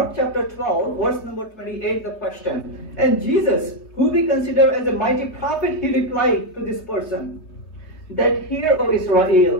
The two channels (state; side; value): late; right; 3.0 ms